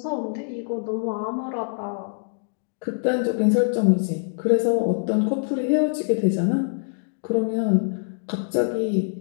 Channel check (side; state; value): right; silent; digital silence